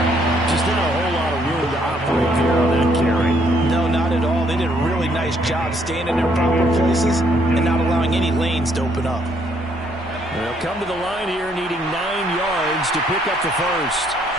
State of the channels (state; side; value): normal; both; correlation 0.68